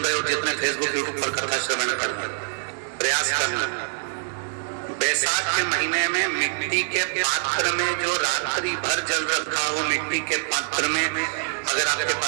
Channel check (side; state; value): left; silent; 60 dB below the other